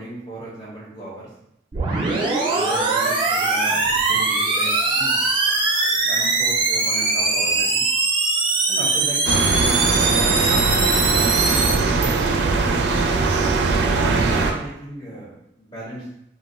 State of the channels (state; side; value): quieter; left; 3.1 dB